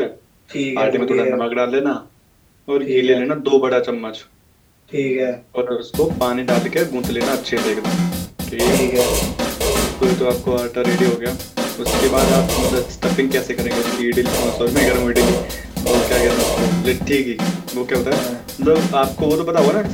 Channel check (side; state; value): both; identical; correlation 1.00